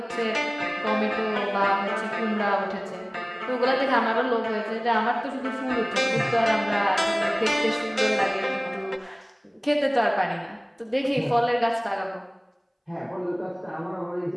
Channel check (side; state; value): both; identical; correlation 1.00